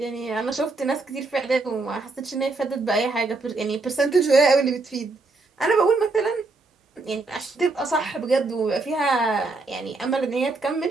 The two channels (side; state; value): left; quieter; 3.5 dB